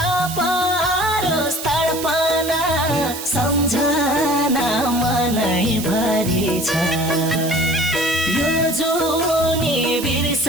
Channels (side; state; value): right; noise; hiss, 9 dB below the sound